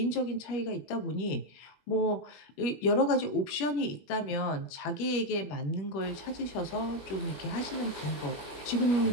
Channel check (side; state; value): right; late; 21 ms